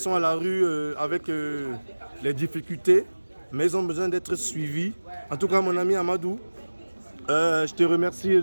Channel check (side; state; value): both; inverted; correlation -1.00